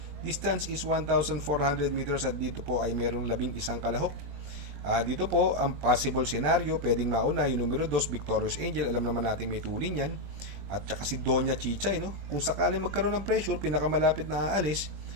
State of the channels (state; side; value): late; left; 20 ms